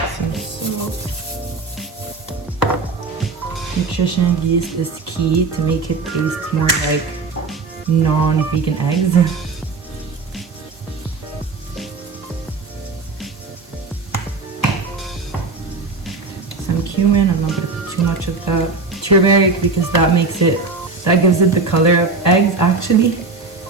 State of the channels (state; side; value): quieter; left; 4.1 dB